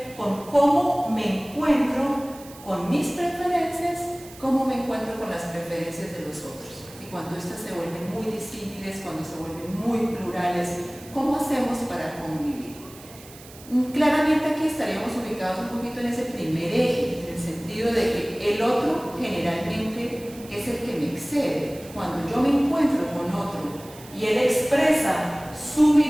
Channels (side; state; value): right; noise; hiss, 20 dB below the sound